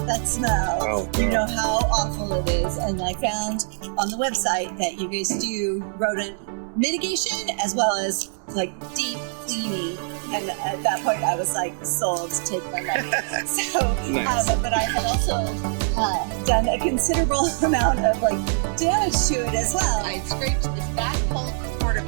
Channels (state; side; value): silent; left; digital silence